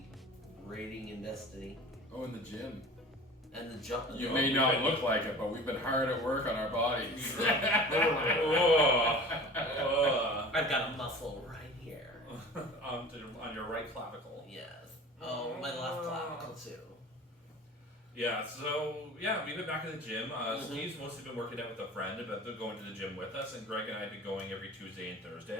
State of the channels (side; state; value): both; normal; correlation 0.40